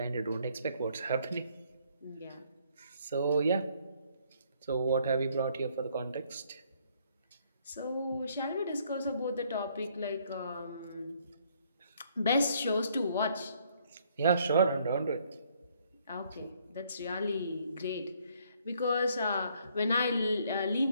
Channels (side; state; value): both; inverted; correlation -0.67